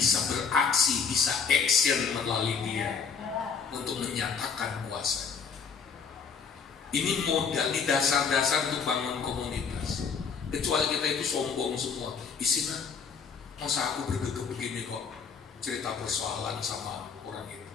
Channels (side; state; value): right; quieter; 6.0 dB